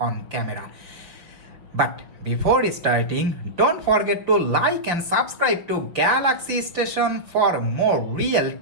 camera. But before starting, don't forget to like and subscribe to Galaxy Station for more real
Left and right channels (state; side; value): late; left; 5.5 ms